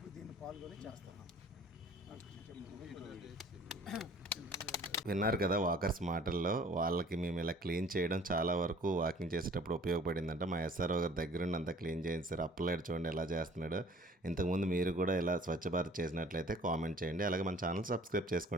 దీన్ని పాల్గొని చేస్తున్నాం. విన్నారు కదా వాకర్స్ మాటల్లో. వాళ్ళకి మేము ఇలా క్లీన్ చేయడం చాలా వరకు వాకింగ్ చేసేటప్పుడు ఉపయోగపడిందంట. మా ఎస్ఆర్ఓ గారి దగ్గరుండి అంతా క్లీన్ చేయించారు. అప్లైడ్ చూడండి ఎలా చేస్తున్నాడు. ఇంతకుముందు మీరు కూడా ఇలా స్వచ్ఛ భారత్ చేసినట్లయితే కామెంట్ చేయండి. అలాగే మన ఛానల్ సబ్స్క్రైబ్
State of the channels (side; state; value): both; normal; correlation 0.52